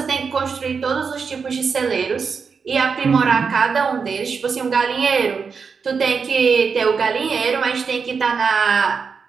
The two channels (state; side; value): quieter; left; 5.6 dB